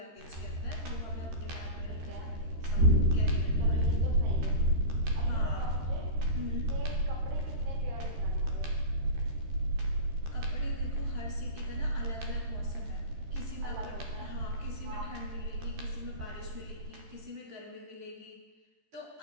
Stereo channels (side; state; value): left; late; 13 ms